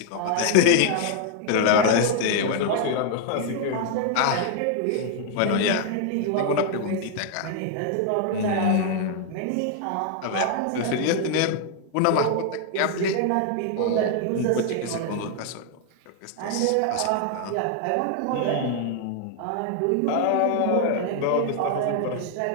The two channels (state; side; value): different; both; correlation 0.00